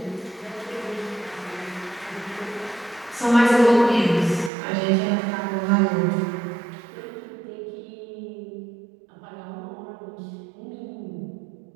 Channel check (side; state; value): left; drops out; at 4.5 s